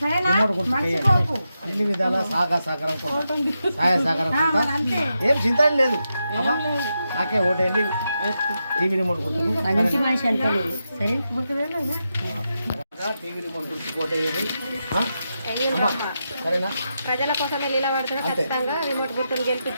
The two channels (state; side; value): inverted; both; correlation -0.87